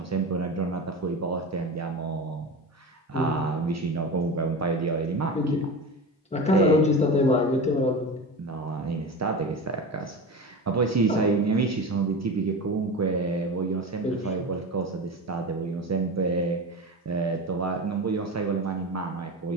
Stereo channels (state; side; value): normal; both; correlation 0.27